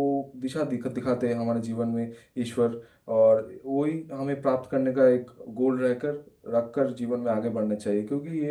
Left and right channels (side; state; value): both; identical; correlation 1.00